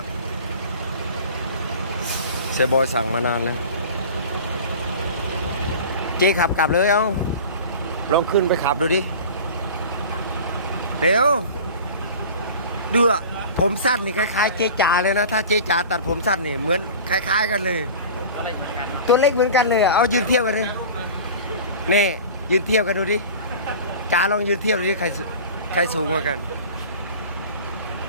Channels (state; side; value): inverted; both; correlation -0.38